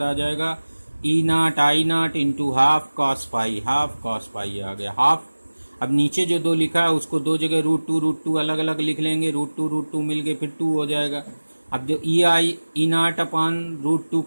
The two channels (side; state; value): both; inverted; correlation -1.00